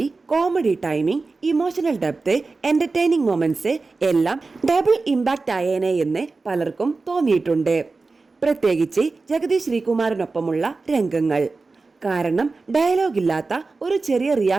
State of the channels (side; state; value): left; quieter; 3.9 dB